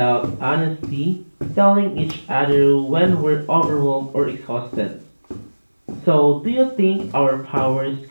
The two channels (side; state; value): both; inverted; correlation -1.00